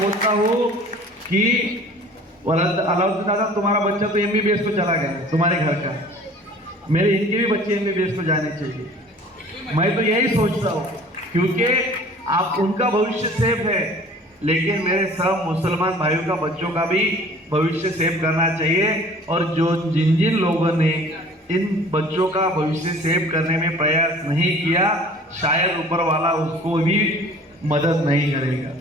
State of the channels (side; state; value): both; normal; correlation 0.48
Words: बोलता हूँ कि अलाउद्दीन दादा, तुम्हारा बच्चा तो MBBS को चला गया तुम्हारे घर का, मेरे इनके भी बच्चे MBBS को जाने चाहिए। मैं तो यही सोचता हूँ क्योंकि आप उनका भविष्य सेफ है, लेकिन मेरे सब मुसलमान भाइयों का बच्चों का भी भविष्य सेव करना चाहिए। और जो जिन लोगों ने इन बच्चों का भविष्य सेव करने में प्रयास नहीं किया, शायद ऊपर वाला उसको भी मदद नहीं करेगा।